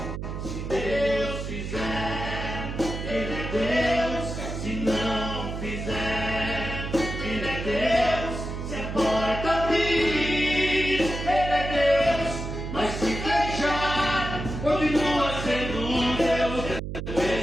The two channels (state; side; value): noise; right; hum, 6 dB below the sound